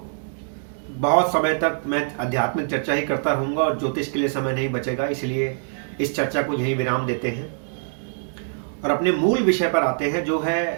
बहुत समय तक मैं आध्यात्मिक चर्चा ही करता रहूंगा और ज्योतिष के लिए समय नहीं बचेगा। इसलिए इस चर्चा को यहीं विराम देते हैं और अपने मूल विषय पर आते हैं, जो है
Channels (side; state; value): left; silent; digital silence